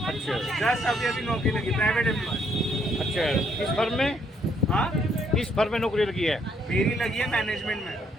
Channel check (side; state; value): both; normal; correlation 0.70